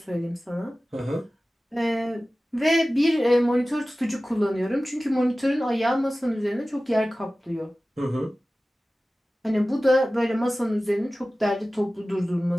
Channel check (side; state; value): both; normal; correlation 0.97